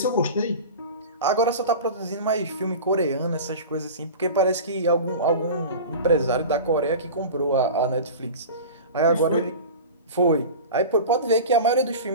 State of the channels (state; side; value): inverted; both; correlation -0.33